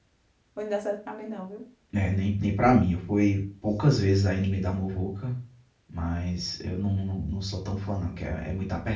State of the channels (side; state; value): both; identical; correlation 1.00